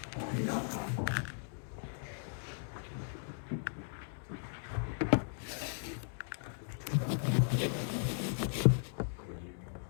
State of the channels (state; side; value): silent; right; digital silence